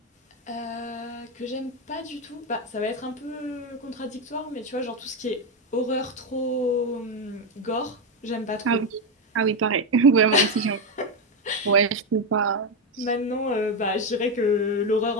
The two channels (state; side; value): normal; both; correlation 0.09